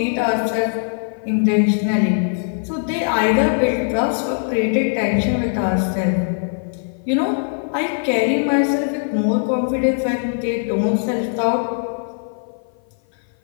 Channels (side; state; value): right; silent; 56 dB below the other